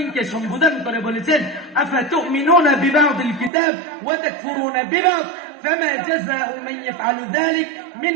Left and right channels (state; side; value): drops out; left; at 3.5 s